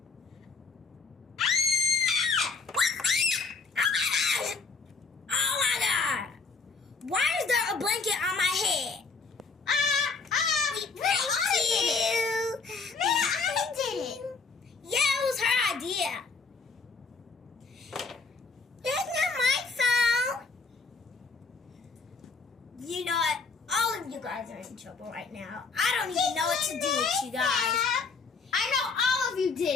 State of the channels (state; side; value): quieter; right; 4.6 dB